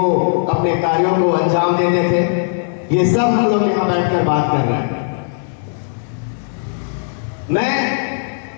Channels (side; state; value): right; silent; 68 dB below the other